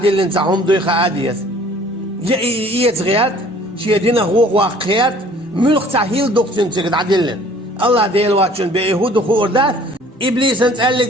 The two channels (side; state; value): both; normal; correlation 0.53